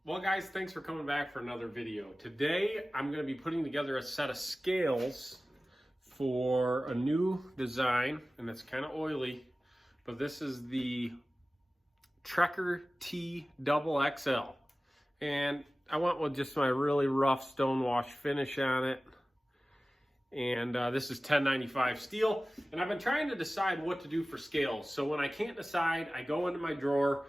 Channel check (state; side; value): normal; both; correlation 0.97